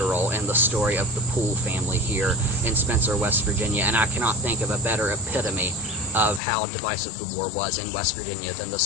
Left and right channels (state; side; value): drops out; right; at 6.4 s